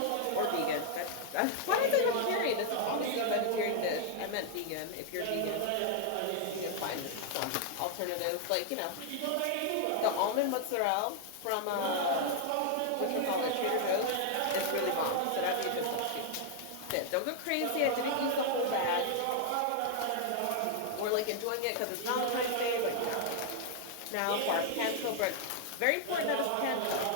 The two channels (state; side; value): different; both; correlation 0.00